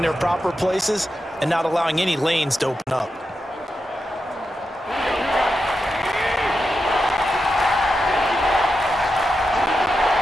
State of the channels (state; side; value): normal; both; correlation 0.88